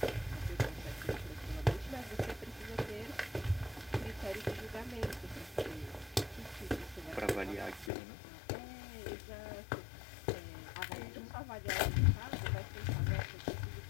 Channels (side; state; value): right; drops out; at 7.9 s